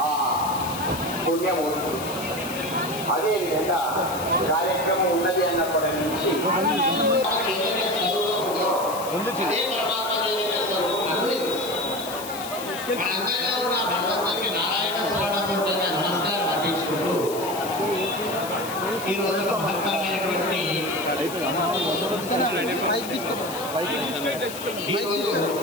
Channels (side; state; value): left; noise; hiss, 11 dB below the sound